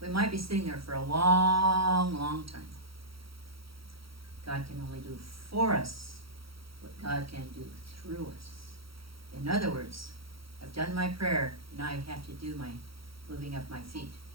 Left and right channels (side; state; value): left; late; 0.75 ms